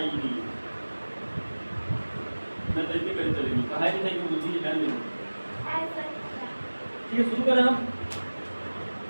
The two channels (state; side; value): inverted; both; correlation -1.00